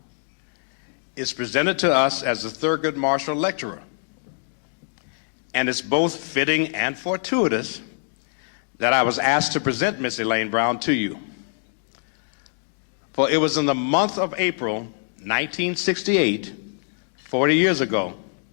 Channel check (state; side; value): silent; right; digital silence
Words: is presented to us as the Thurgood Marshall Lecturer. And it's both fitting and fortuitous that I was asked to present Miss Elaine Brown to you. For it was in the month of April 1968, 40 years ago,